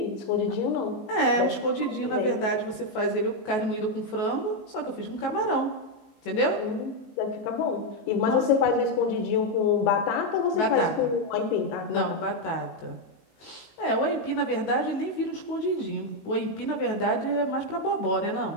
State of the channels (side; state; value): right; late; 19 ms